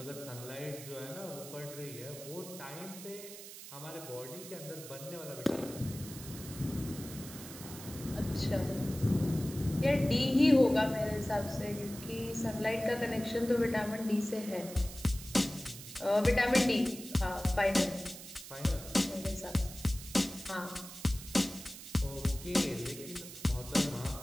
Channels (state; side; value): noise; right; hiss, 13 dB below the sound